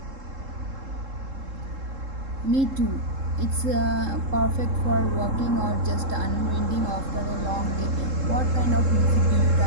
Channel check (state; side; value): late; left; 3.7 ms